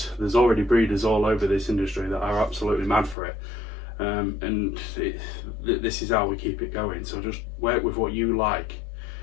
There's already breeders all over this industry that are absolutely mad for it. And this is how we keep it going. So just work with what you like.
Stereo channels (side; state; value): right; drops out; at 3.2 s